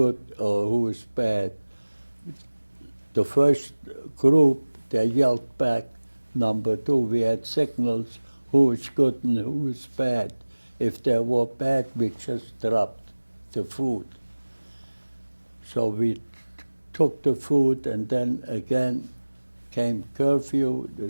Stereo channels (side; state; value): both; inverted; correlation -1.00